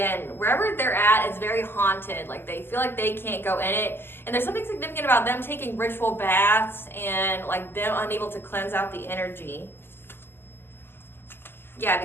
wherever they're at, it's very haunted. Like they feel like they can't go in it. And there's something significant about them taking ritual baths and like them unable to cleanse out the energy. Yeah,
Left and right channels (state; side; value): late; right; 0.11 ms